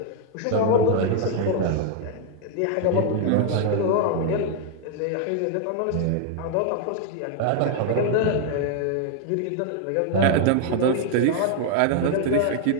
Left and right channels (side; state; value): both; different; correlation 0.00